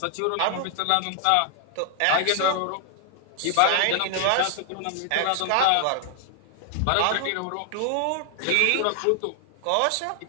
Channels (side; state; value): both; different; correlation 0.00